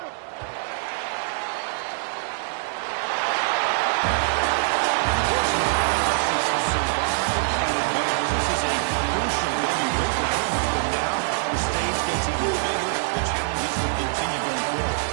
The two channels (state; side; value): silent; left; digital silence